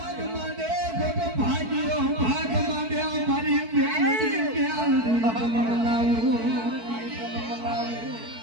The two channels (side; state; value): left; late; 4.5 ms